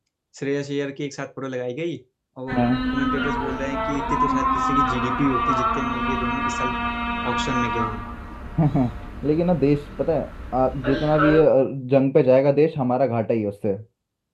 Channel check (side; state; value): both; identical; correlation 1.00